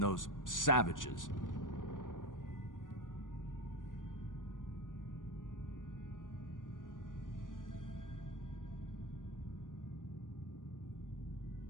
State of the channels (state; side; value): late; right; 0.88 ms